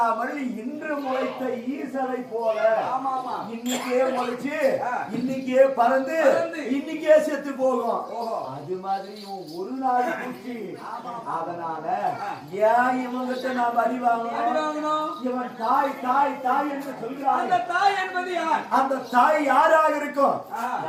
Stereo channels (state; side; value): identical; both; correlation 1.00